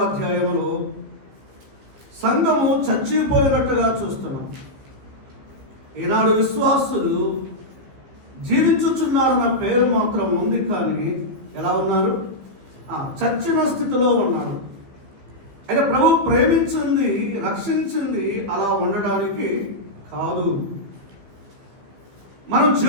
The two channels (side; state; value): left; late; 15 ms